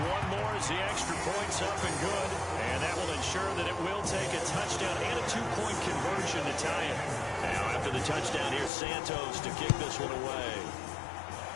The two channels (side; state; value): right; drops out; at 8.7 s